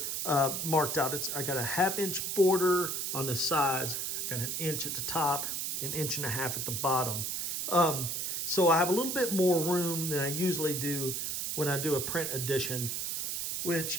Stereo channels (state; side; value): noise; right; hiss, 1 dB below the sound